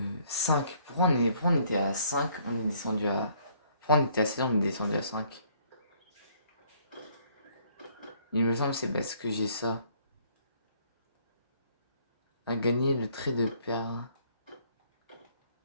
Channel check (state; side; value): inverted; both; correlation -0.62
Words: 5. Pourquoi on était à 5? On est descendu à... Pourquoi on était à 7, on est descendu à 5? Il me semble que c'est parce que j'ai ça. À gagner le trait de perle.